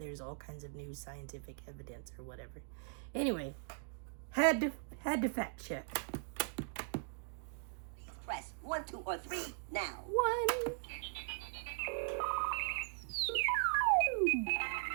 all kinds of new scientific evidence or whatever. Anyway, had to fact check. Please press 1, 2, or 3 now. 1.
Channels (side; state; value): left; silent; digital silence